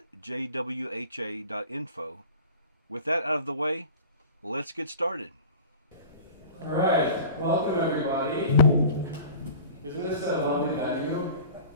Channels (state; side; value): inverted; both; correlation -0.41